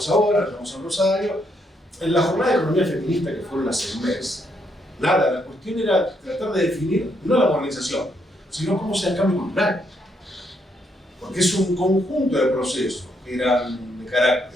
ahora, nos llevamos a Rosario. En la jornada de economía feminista que fueron hace un mes, nada, la cuestión era tratar de definir no la modernización, sino cómo sea el cambio cultural. Porque es un conjunto de procesos que eran de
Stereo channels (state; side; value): normal; both; correlation 0.75